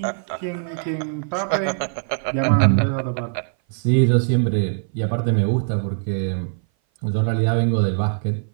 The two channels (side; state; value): left; silent; 58 dB below the other